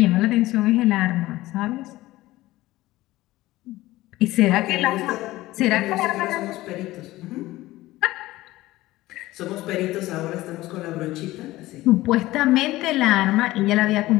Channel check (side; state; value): right; quieter; 17.5 dB